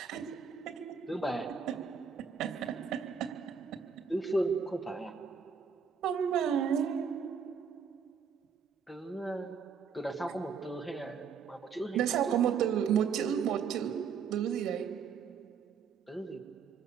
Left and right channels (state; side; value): quieter; left; 6.4 dB